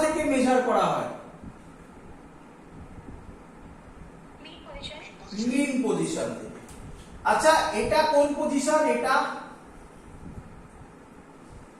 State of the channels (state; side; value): identical; both; correlation 1.00